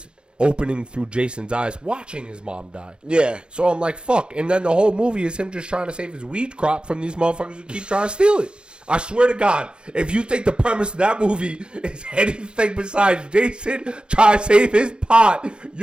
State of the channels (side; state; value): left; late; 0.052 ms